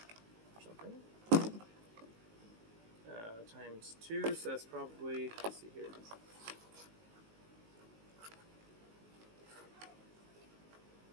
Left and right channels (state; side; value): late; left; 19 ms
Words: or something. Times 2, so that's probably, let's see here.